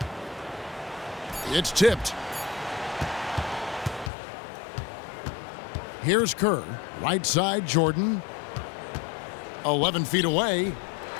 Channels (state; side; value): drops out; right; at 4.1 s